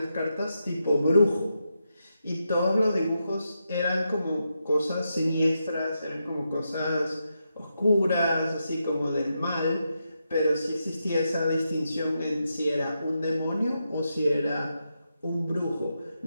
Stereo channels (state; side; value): inverted; both; correlation -0.85